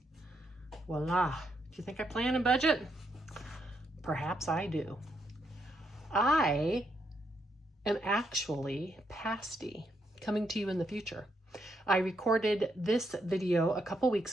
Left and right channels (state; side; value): normal; both; correlation 0.78